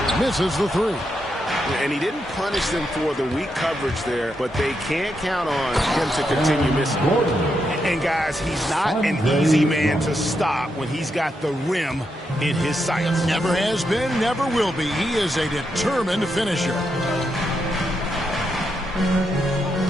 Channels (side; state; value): both; normal; correlation 0.83